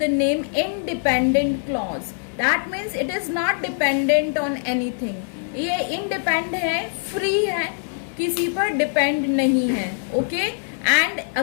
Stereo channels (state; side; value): silent; right; digital silence